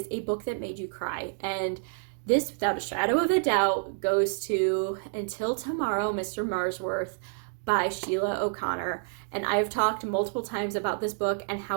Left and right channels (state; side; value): silent; left; 59 dB below the other